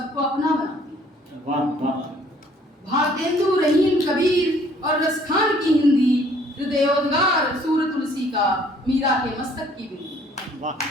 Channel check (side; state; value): both; normal; correlation 0.59